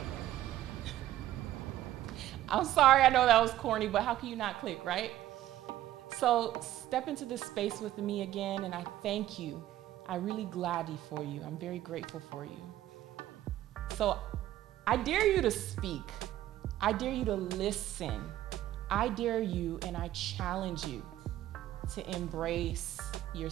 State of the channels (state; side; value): quieter; left; 13.6 dB